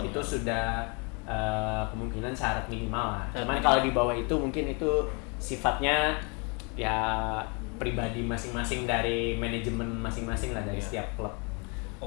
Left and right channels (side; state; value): right; quieter; 33.5 dB